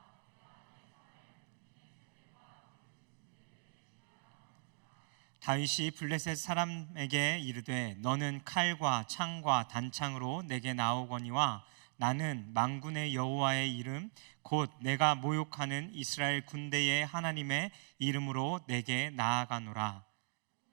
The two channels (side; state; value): left; silent; digital silence